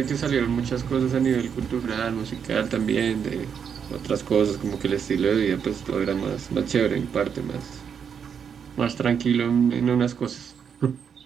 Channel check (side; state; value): left; quieter; 7.3 dB